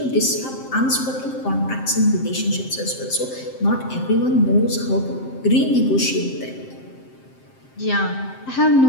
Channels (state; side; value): late; right; 7.6 ms